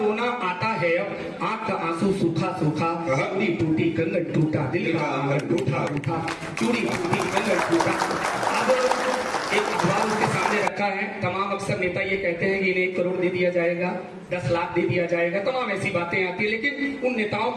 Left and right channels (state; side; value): identical; both; correlation 1.00